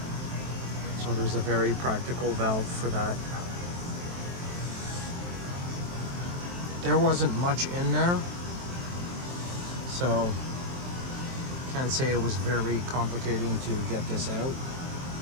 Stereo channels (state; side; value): late; left; 23 ms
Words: So there's a very practical valve for that. There wasn't much in there, so can't say it was very complicating to get this out.